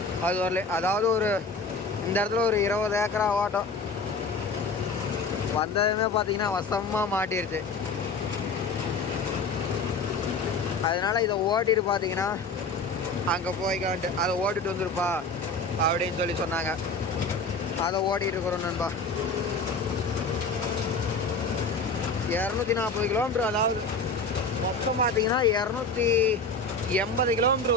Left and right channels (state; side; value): quieter; right; 3.6 dB